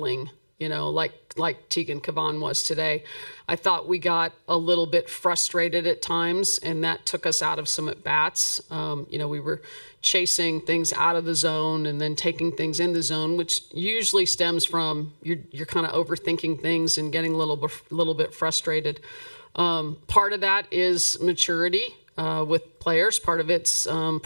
like Tegan Cavan was today. I thought we got a little bit frustrated at times, and that took us out of some at-bats. We were chasing things out of the zone and then taking things in the zone, which usually stems from you're kind of overthinking things and getting a little bit frustrated. Part of that is maturity with players. Part of it's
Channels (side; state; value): both; inverted; correlation -1.00